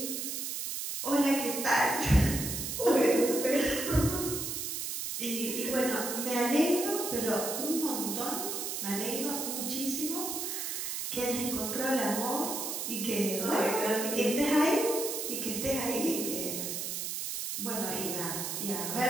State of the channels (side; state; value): right; noise; hiss, 3 dB below the sound